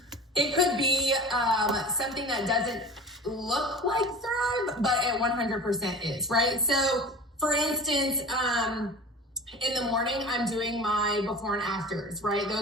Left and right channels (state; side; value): normal; both; correlation 0.35